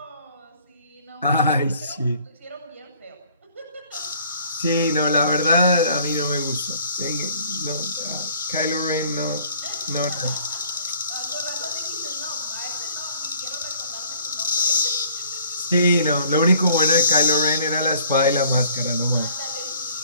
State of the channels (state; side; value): inverted; both; correlation -0.56